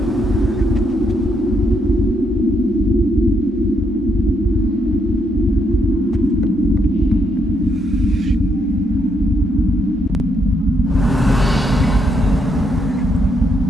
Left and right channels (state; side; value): normal; both; correlation 0.76